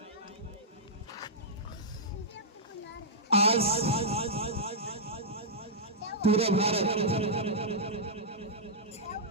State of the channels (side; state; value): both; normal; correlation -0.10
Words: आज पूरा भारत